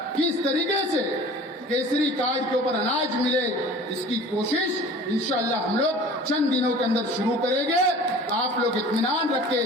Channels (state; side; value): normal; both; correlation 0.43